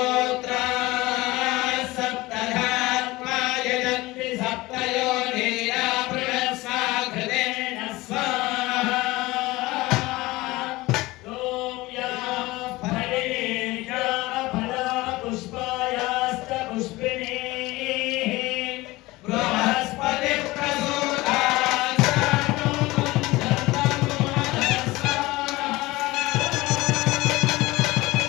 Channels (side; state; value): right; quieter; 20.2 dB